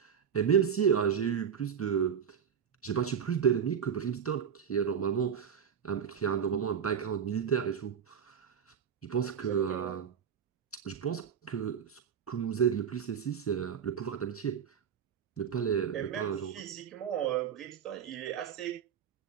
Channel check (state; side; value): quieter; left; 7.9 dB